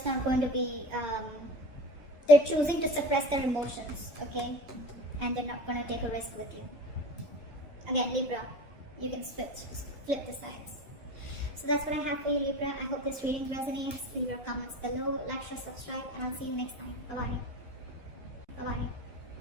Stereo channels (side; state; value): both; normal; correlation 0.34